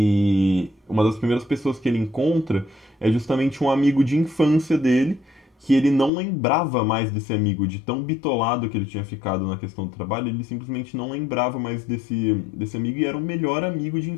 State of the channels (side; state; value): right; drops out; at 6.1 s